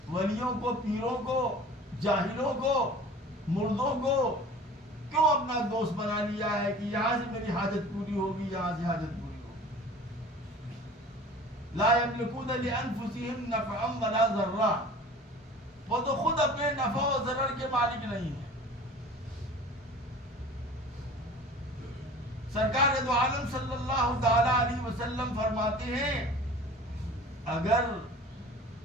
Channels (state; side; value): normal; both; correlation 0.42